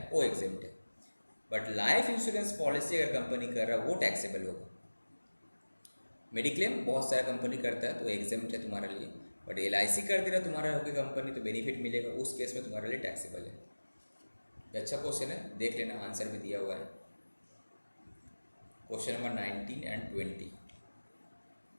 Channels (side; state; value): both; inverted; correlation -1.00